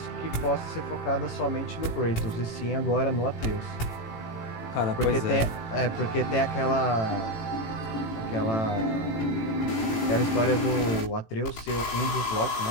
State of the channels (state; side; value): late; right; 18 ms